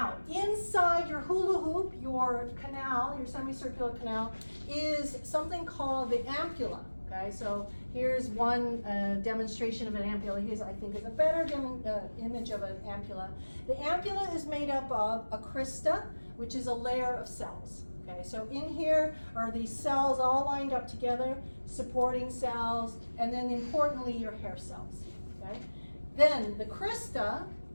inside your hula hoop, your canal, your semicircular canal, is something called the ampulla. Okay, so here's one demonstration of an ampulla. Here's, I think, is a better image of an ampulla. The ampulla is made up of a crista, which is a layer of cells. Okay, so in here are these cells all lined up together, supporting cells, and then importantly, your hair cells, okay? Then the crista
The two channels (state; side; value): inverted; both; correlation -1.00